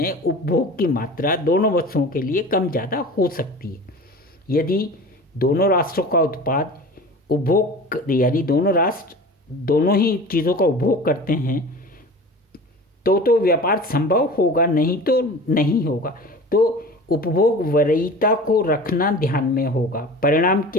उपभोग की मात्रा दोनों वस्तुओं के लिए कम ज़्यादा हो सकती है। यदि दोनों राष्ट्रों का उत्पाद उपभोग, यानी दोनों राष्ट्र दोनों ही चीज़ों का उपभोग करते हैं तो व्यापार संभव होगा, नहीं तो नहीं होगा। तो उपभोग वरीयता को रखना ध्यान में होगा। परिणाम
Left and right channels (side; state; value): both; normal; correlation 0.38